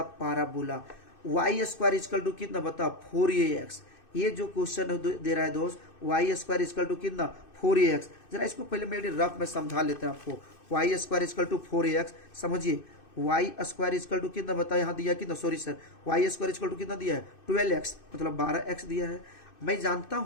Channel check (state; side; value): late; right; 2.6 ms